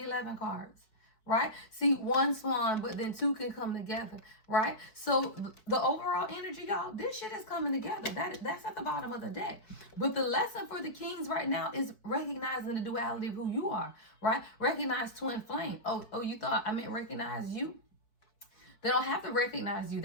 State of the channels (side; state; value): right; late; 4.6 ms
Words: cards. Right? See, one swan, but then two can come together, right? So the overall energy, y'all, this shit is coming together. That's at the bottom of the deck. But the lesson for the kings right now is recognizing the duality of who you are, right? Recognize twin flame. Oh, you thought I meant recognize you? They don't have to recognize you.